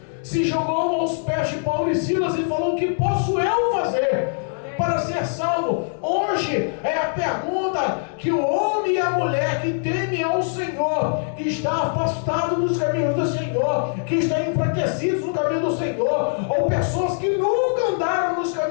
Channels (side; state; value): right; silent; digital silence